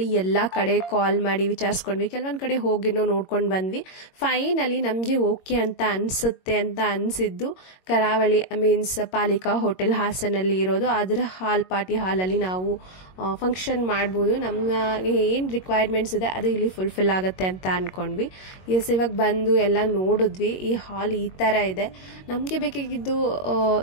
ಎಲ್ಲಾ ಕಡೆ ಕಾಲ್ ಮಾಡಿ ವಿಚಾರಿಸ್ಕೊಂಡ್ವಿ, ಕೆಲವೊಂದ್ ಕಡೆ ಹೋಗಿ ನೋಡ್ಕೊಂಡು ಬಂದ್ವಿ. ಫೈನಲಿ ನಮ್ಗೆ ಓಕೆ ಅಂತ ಅನ್ಸುತ್ತೆ ಅಂತ ಅನ್ಸಿದ್ದು ಕರಾವಳಿ ಮೀನ್ಸ್ ಪಾಲಿಕಾ ಹೋಟೆಲ್ ಹಾಸನಲ್ಲಿ ಇರೋದು. ಅದರ ಪಾರ್ಟಿ ಹಾಲಲ್ಲಿ ನಾವು ಫಂಕ್ಷನ್ ಮಾಡ್ಬೋದು. ನಮ್ಗೆ ಏನ್ ರಿಕ್ವೈರ್ಮೆಂಟ್ಸ್ ಇದೆ ಅದು ಇಲ್ಲಿ ಫುಲ್ಫಿಲ್ ಆಗುತ್ತೆ ಅಂತ ಅನ್ಕೊಂಡ್ವಿ. ಎಸ್, ಇವಾಗ ಬಂದು ಎಲ್ಲ ನೋಡಿದ್ವಿ. ಈ ಹಾಲ್ ಈ ತರ ಇದೆ. ನಮ್ಗೆ ಬೇಕಾಗಿದ್ದು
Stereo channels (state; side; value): late; right; 22 ms